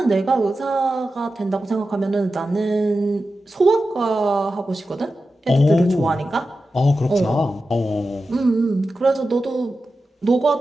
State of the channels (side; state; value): both; normal; correlation 0.92